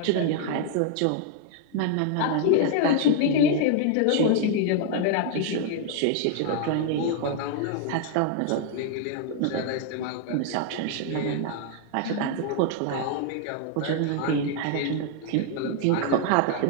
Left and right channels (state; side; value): different; both; correlation 0.00